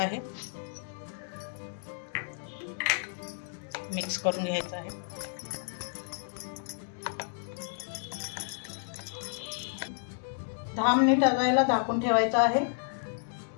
आहे। मिक्स करून घ्यायचा आहे। दहा मिनिट याला झाकून ठेवायचं आहे।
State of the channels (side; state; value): right; silent; digital silence